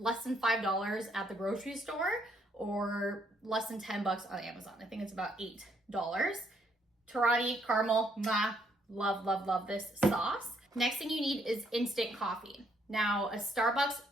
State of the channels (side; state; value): both; normal; correlation 0.71